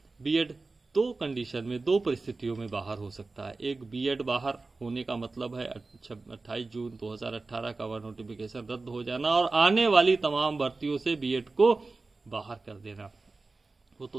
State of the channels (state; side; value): quieter; left; 3.6 dB